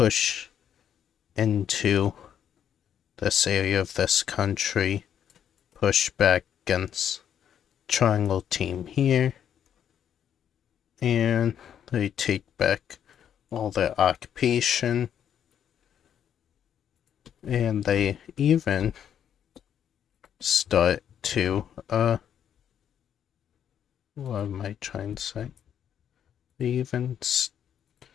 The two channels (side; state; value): right; quieter; 9.2 dB